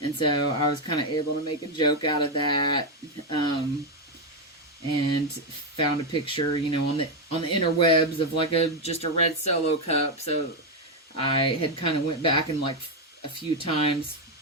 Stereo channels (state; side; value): normal; both; correlation 0.05